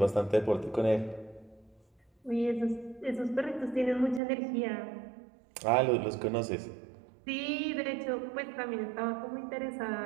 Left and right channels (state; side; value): drops out; left; at 4.2 s